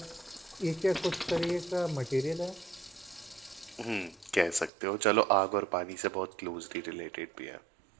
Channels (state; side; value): drops out; left; at 4.7 s